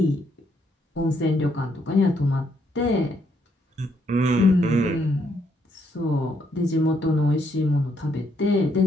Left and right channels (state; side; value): normal; both; correlation 0.73